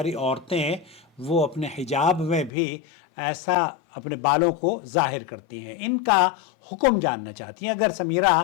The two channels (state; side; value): drops out; right; at 2.5 s